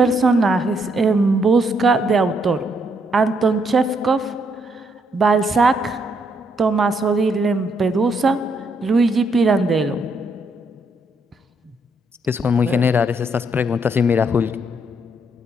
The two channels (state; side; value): normal; both; correlation 0.74